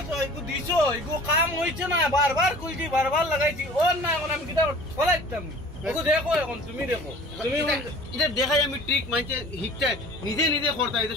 তো এগো দিছো এগো কাম হইছে না বারবার কইছি বারবার লাগাইছি ওর না এখন আমি কিটা ফলাইতাম ওগো দেখো এখন তুমি দেখো তুমি এটা দেখাই আমি ট্রিক মানছে হিকটা নিজে নিজে করতে হয়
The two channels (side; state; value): both; normal; correlation 0.45